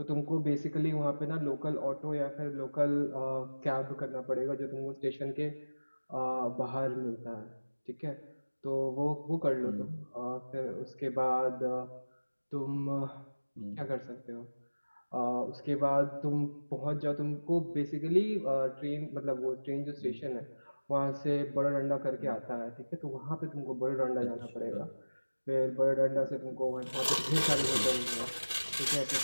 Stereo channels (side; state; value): both; inverted; correlation -1.00